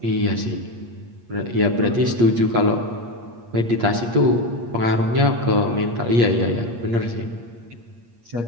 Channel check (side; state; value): left; late; 8.6 ms